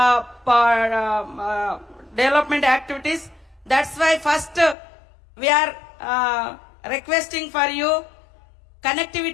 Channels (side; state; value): right; drops out; at 4.8 s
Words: development activities. That's why first we are requesting for you,